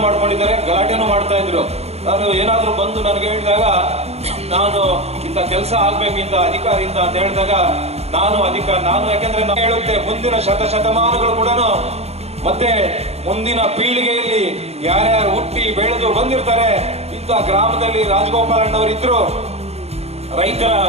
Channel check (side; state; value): left; late; 0.31 ms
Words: ಮಾಡ್ಕೊಂಡಿದ್ದಾರೆ, ಗಲಾಟೆನೂ ಮಾಡ್ತಾ ಇದ್ರು. ನಾನು ಏನಾದ್ರೂ ಬಂದು ನನಗೆ ಹೇಳಿದಾಗ ನಾನು ಇಂಥ ಕೆಲಸ ಆಗ್ಬೇಕು ಇಂಥ ಅಧಿಕಾರಿಯಿಂದ ಅಂತ ಹೇಳಿದಾಗ ನಾನು ಯಾಕೆಂದ್ರೆ ನಾನು ಹೇಳುತ್ತೆ ಮುಂದಿನ ಶತಮಾನಗಳು ಕೂಡ ಮತ್ತೆ ಮುಂದಿನ ಪೀಳಿಗೆಯಲ್ಲಿ ಯಾರ್ಯಾರು ಹುಟ್ಟಿ ಬೆಳೆದು ಬಂದಿರ್ತಾರೆ ಇಂಥ ಗ್ರಾಮದಲ್ಲಿ ರಾಜಗೋಪಾಲಣ್ಣವರಿದ್ರು. ರೈತರ